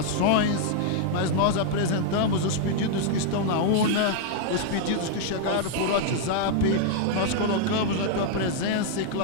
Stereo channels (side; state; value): both; different; correlation -0.01